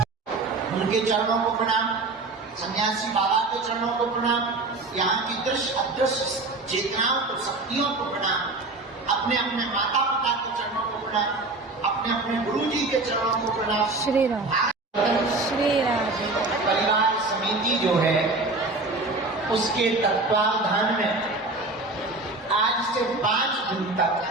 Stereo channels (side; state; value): left; quieter; 3.3 dB